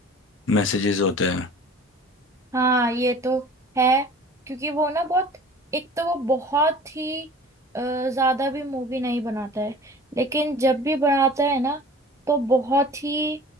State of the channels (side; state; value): both; normal; correlation 0.44